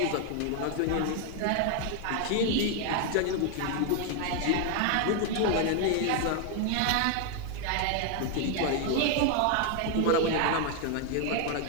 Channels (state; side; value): different; both; correlation 0.01